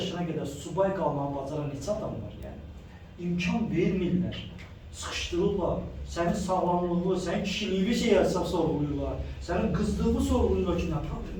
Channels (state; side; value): identical; both; correlation 1.00